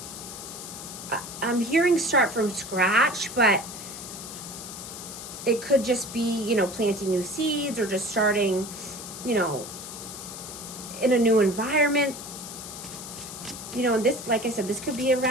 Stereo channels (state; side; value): noise; left; hiss, 11 dB below the sound